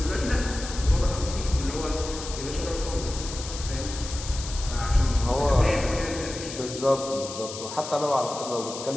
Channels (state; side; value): noise; left; hiss, 10 dB below the sound